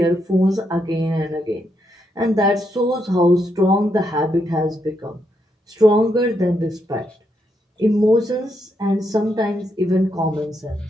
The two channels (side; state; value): both; normal; correlation 0.80